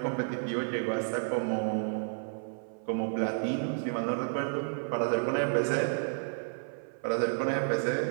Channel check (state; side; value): silent; left; 57 dB below the other